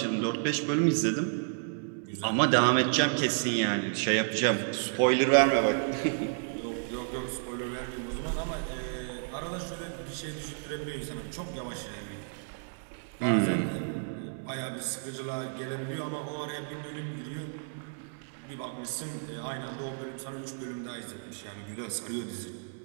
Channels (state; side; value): silent; left; digital silence